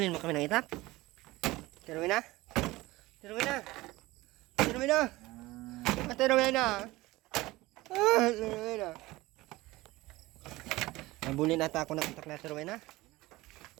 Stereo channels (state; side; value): quieter; left; 19.5 dB